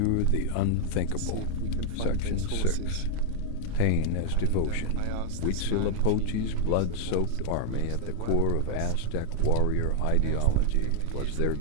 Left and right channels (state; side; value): different; both; correlation 0.00